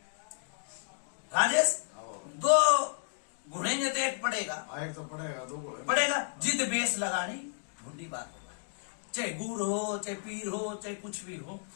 राजेश, 2 घुड़ेंगे तो एक पड़ेगा, एक तो पड़ेगा, 2 पड़ेगा। जिद बेस लगानी बुढ़ी बात होगा, चाहे गुर हो, चाहे पीर हो, चाहे कुछ भी हो।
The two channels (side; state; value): right; silent; digital silence